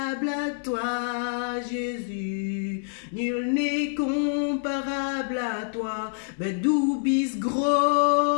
à toi, Jésus. Nul n'est comparable à toi. Mais du bist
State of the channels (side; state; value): right; silent; 61 dB below the other